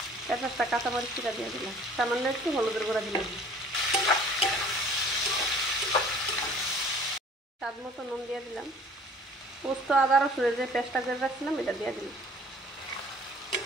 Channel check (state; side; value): normal; both; correlation 0.51